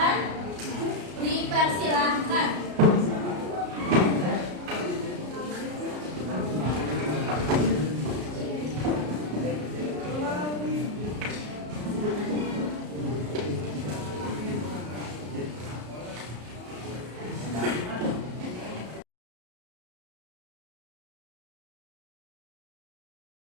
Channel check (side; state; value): left; late; 33 ms